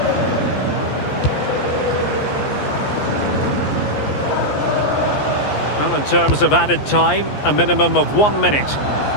Well, in terms of added time, a minimum of 1 minute.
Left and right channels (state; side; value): late; right; 14 ms